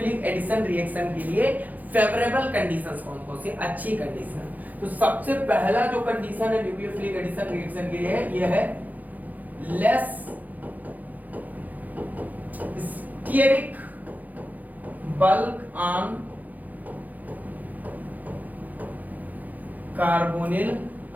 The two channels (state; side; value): late; left; 0.081 ms